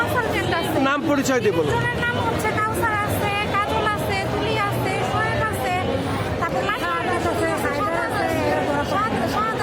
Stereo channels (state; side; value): noise; right; hum, 23 dB below the sound